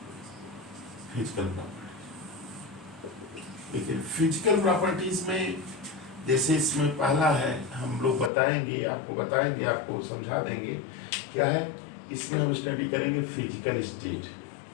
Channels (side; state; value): right; drops out; at 8.3 s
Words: फिजिकल प्रॉपर्टी, लेकिन फिजिकल प्रॉपर्टीज में जैसे इसमें पहला है, हम लोग बताएंगे, आपको समझा देंगे क्या है। इसमें हम स्टडी करेंगे physical state,